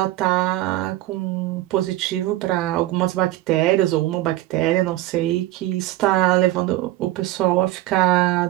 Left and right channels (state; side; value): quieter; left; 16.1 dB